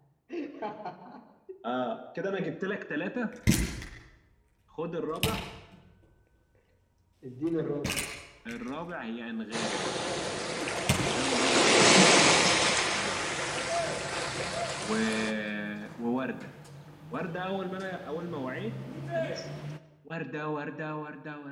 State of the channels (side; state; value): both; identical; correlation 1.00